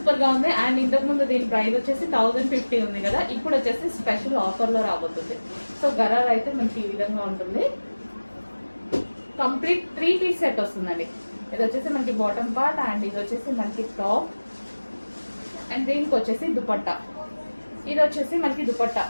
గా ఉంది అండ్ ఇంతకు ముందు దీని ప్రైస్ వచ్చేసి 1050 ఉంది కదా, ఇప్పుడు వచ్చేసి స్పెషల్ ఆఫర్ లో రాబోతుంది. సో గరారా అయితే మనకి ఈ విధంగా ఉంటుంది. కంప్లీట్ 3 పీస్ సెట్ వస్తుందండి. ఇది వచ్చేసి మనకి బాటమ్ పార్ట్ అండ్ ఇది వచ్చేసి మనకి టాప్ అండ్ దీనికి వచ్చేసి దుపట్టా. ఇది వచ్చేసి మనకి దుపట్టా.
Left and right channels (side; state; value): both; inverted; correlation -1.00